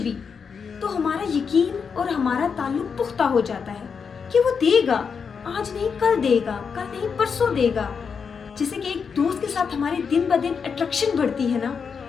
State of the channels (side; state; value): right; quieter; 6.0 dB